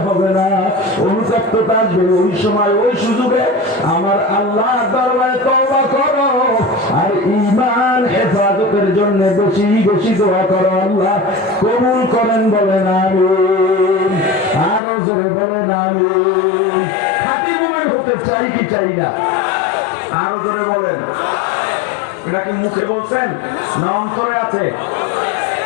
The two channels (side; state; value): right; drops out; at 14.8 s